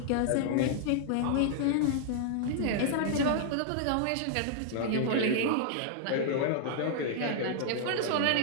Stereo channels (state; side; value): different; both; correlation -0.01